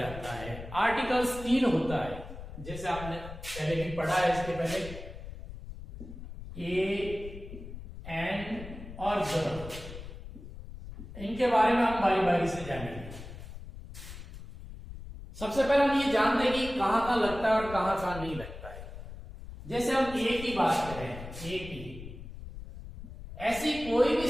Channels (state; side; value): noise; left; rumble, 12 dB below the sound